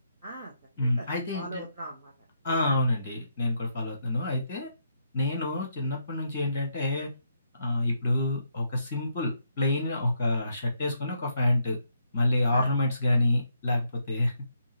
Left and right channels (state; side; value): inverted; both; correlation -0.77